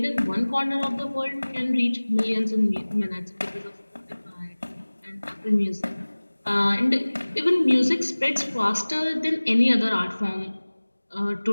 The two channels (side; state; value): both; inverted; correlation -1.00